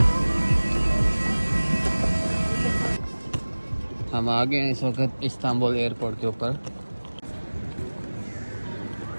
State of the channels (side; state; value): both; inverted; correlation -1.00